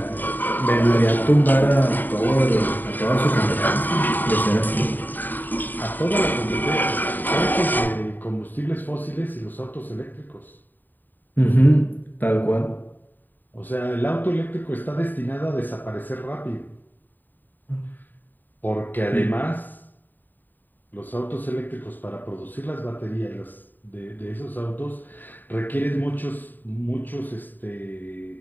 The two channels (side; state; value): right; late; 0.089 ms